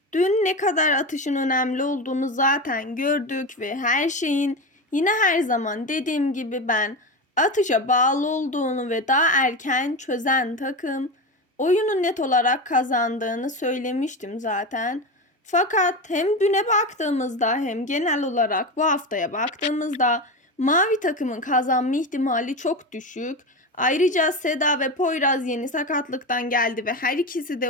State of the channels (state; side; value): normal; both; correlation 0.21